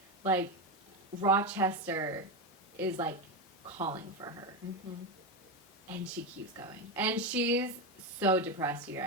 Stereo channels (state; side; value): normal; both; correlation 0.12